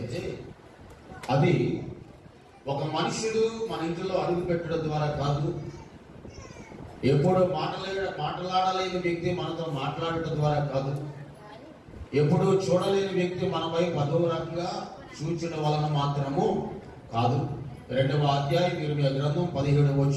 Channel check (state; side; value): identical; both; correlation 1.00